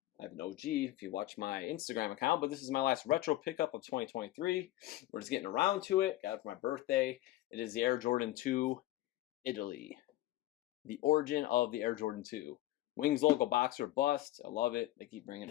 I have an OG if you watch my Instagram account, but this is my last retro pickup of 2023. We're just getting around to it. Got it for my birthday. It is the Air Jordan 2 Italy. The origin of the Air Jordan 2. Wings logo boxer bust. I love it. They keep bringing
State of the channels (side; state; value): right; quieter; 15.8 dB